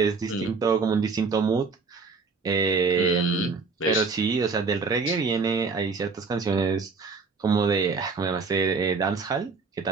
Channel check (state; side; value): quieter; left; 4.7 dB